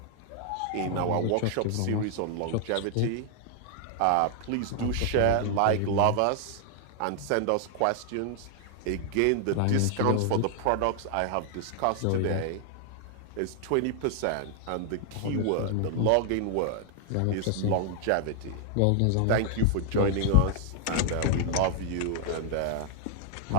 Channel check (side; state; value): both; different; correlation 0.00